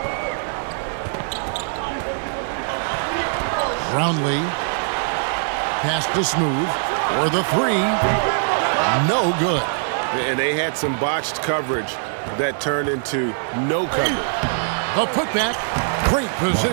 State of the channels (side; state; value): left; silent; 57 dB below the other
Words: Brownlee. Pass to Smooth. For the 3. No good. And they had some botched coverage that turned into no coverage. The putback. Great